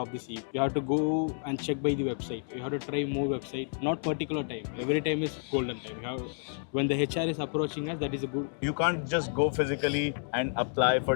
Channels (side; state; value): right; silent; 58 dB below the other